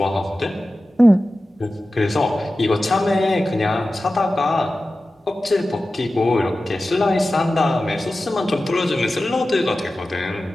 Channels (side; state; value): both; normal; correlation 0.95